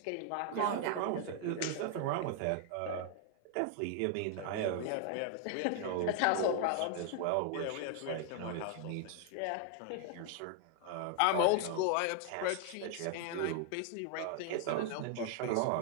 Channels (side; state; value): both; different; correlation 0.00